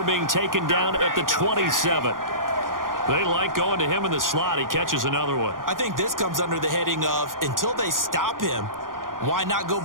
being taken down at the 27. They like going to him in the slot. He catches another one. I think this comes under the heading of until they stop him, why not go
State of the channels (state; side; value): late; left; 0.90 ms